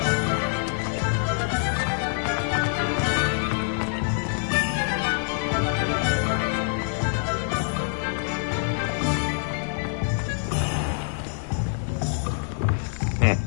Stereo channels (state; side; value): silent; right; 61 dB below the other